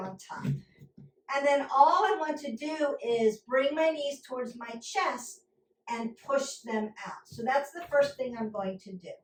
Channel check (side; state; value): both; identical; correlation 1.00